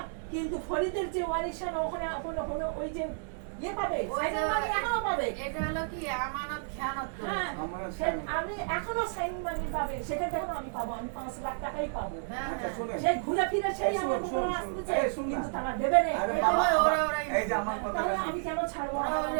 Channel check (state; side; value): silent; left; digital silence